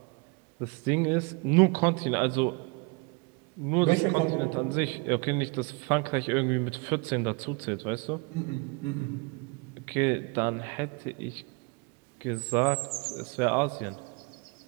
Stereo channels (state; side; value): quieter; left; 29.0 dB